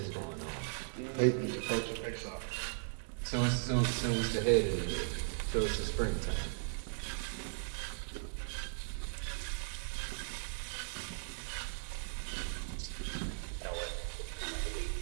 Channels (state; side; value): silent; left; digital silence